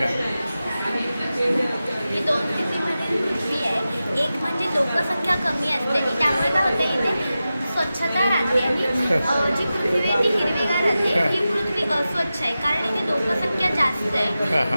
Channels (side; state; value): both; inverted; correlation -0.93